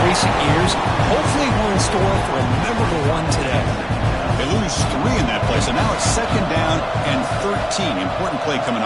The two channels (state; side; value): identical; both; correlation 1.00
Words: recent years. Hopefully we're in store for a memorable one today. They lose 3 in that play, so now it's second down and 13. Important play coming